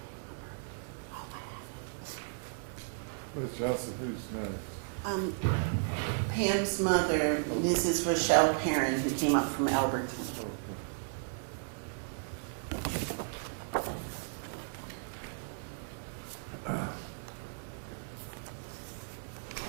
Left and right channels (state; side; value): silent; left; digital silence